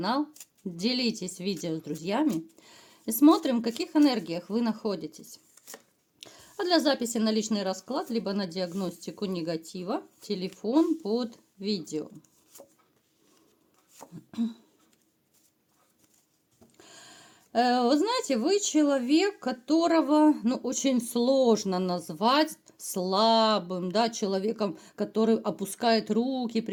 делитесь видео с друзьями и смотрим, в каких энергиях вы находитесь. А для записи на личный расклад, либо на диагностику негатива, телефон под видео. Вы знаете, вы человек, которого, очень сложно назвать слабым, да, человеком, который опускает руки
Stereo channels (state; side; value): identical; both; correlation 1.00